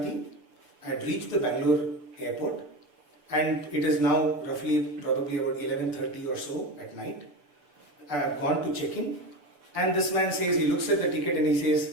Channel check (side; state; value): left; late; 6.8 ms